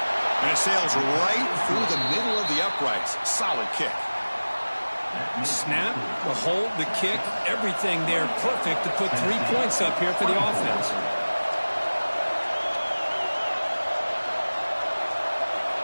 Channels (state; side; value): inverted; both; correlation -1.00